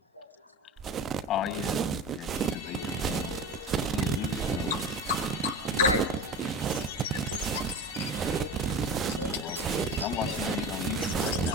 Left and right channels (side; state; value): both; normal; correlation 0.30